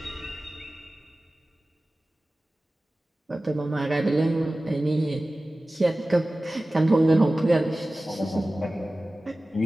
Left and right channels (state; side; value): normal; both; correlation 0.97